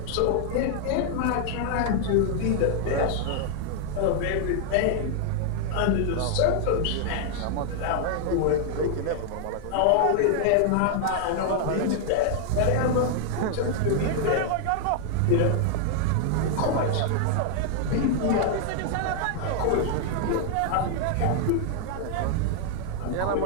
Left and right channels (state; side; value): different; both; correlation 0.00